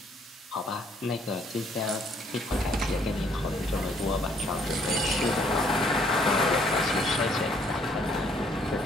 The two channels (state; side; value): normal; both; correlation 0.65